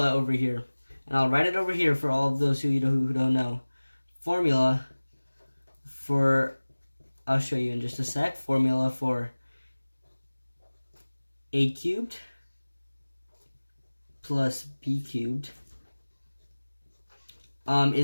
over here, and I'll write it over here for all of those who don't know, formula for, I'll show you in just a sec, formula for a cubed plus b cubed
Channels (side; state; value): both; inverted; correlation -1.00